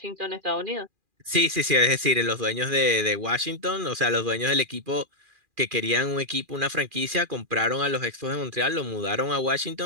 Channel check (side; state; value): left; late; 2.4 ms